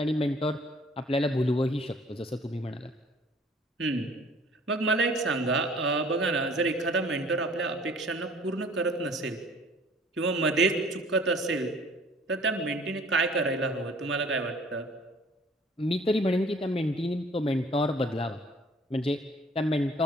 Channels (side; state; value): both; normal; correlation 0.54